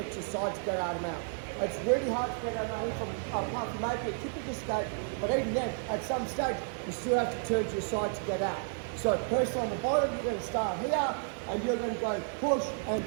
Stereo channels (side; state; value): left; silent; digital silence